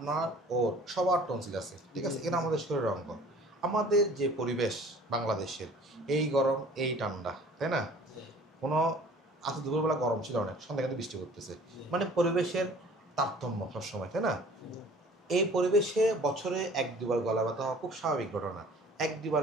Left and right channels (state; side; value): normal; both; correlation 0.49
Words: ওর সবার টনসিল আছে, ঠিক আছে? এখানে আমাদের শরীরের অঙ্গ। আমাদের যে পরিবেশ বাংলাদেশের, এই গরম এই ঠান্ডা, তাই না? কোনো আজ দুপুরবেলা গরম ছিল অনেক, সন্ধ্যা কিন্তু বৃষ্টি করতেছে, মানে পরিবেশের তারতম্য সবসময়, তাই না? এই পরিবেশে বছরে এক দুবার গলা ব্যথা হওয়া খুব স্বাভাবিক ঘটনা। এক